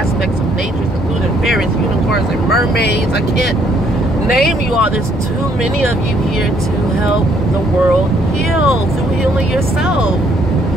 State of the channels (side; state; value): both; normal; correlation 0.67